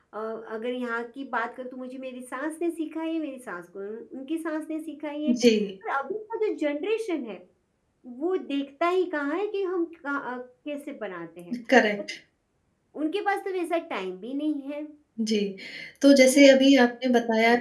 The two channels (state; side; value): identical; both; correlation 1.00